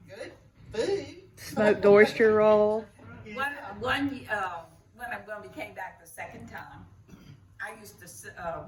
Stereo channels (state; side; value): identical; both; correlation 1.00